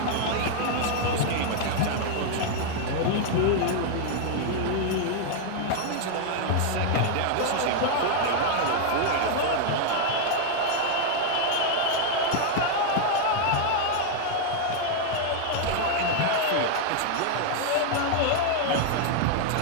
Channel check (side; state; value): both; different; correlation 0.00